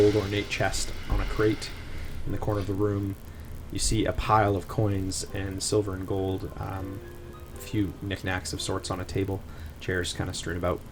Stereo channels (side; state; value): both; identical; correlation 1.00